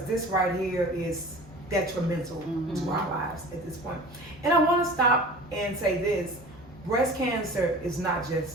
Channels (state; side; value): normal; both; correlation 0.40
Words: this right here is detrimental to our lives at this point. And I want to stop and say this: breast cancer is not